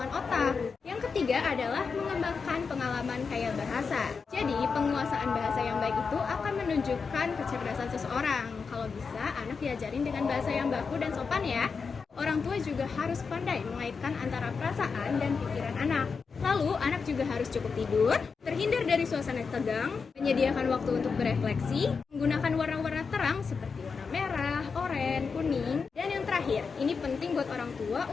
otak. Yang ketiga adalah mengembangkan pengalaman kaya bahasa. Jadi penguasaan bahasa yang baik itu akan menunjukkan kecerdasan seseorang. Kalau bisa, anak diajarin dengan bahasa yang baku dan sopan ya. Orang tua juga harus pandai mengaitkan antara perasaan dan pikiran anak. Lalu, anak juga harus cukup tidur, terhindar dari suasana tegang, menyediakan waktu untuk berefleksi, menggunakan warna-warna terang seperti warna merah, oranye, kuning, dan yang terakhir, ini penting buat orang tua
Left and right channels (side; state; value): right; quieter; 5.3 dB